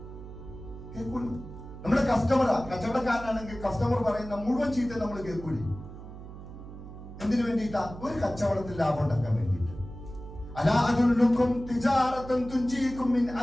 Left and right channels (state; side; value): noise; right; hum, 13 dB below the sound